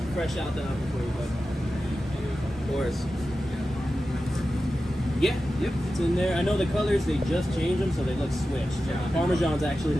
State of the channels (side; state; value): both; normal; correlation 0.93